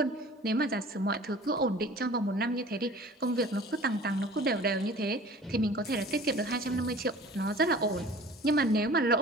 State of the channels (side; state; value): both; normal; correlation 0.44